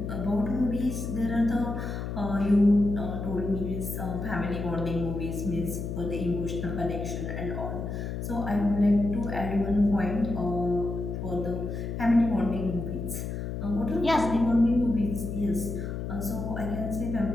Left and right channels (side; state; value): left; noise; hum, 5 dB below the sound